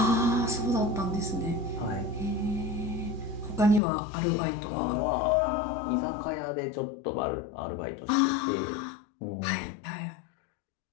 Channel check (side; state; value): right; drops out; at 3.8 s